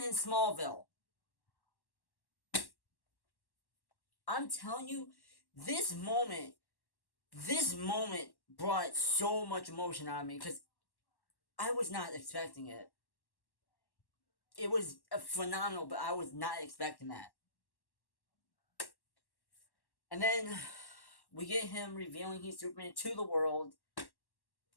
in Smallville. I'm telling you, this moment brought so much emotion out of me because I was not expecting it. It was phenomenal, but I was not expecting that. And then we get him revealing he's Superman to the world.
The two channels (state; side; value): late; right; 1.1 ms